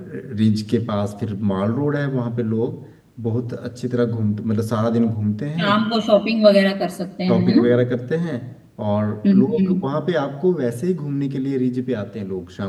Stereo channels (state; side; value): identical; both; correlation 1.00